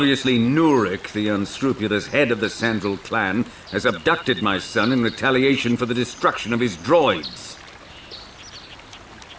Nurik, the unscrupulous head of the Sandral clan, has abducted my son in retaliation for the destruction of his droids.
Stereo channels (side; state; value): both; identical; correlation 1.00